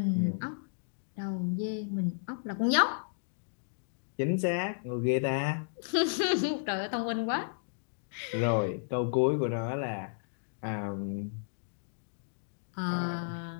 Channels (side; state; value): right; silent; digital silence